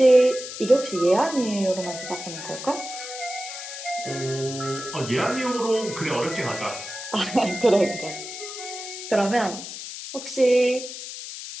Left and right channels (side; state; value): left; noise; hiss, 9 dB below the sound